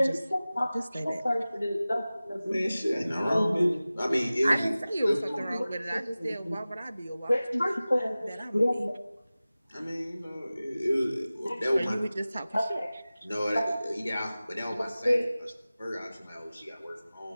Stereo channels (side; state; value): both; inverted; correlation -0.97